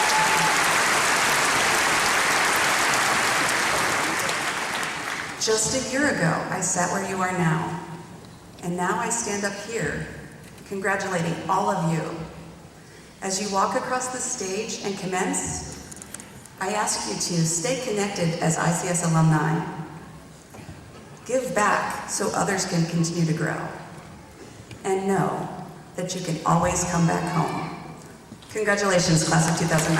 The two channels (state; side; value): identical; both; correlation 1.00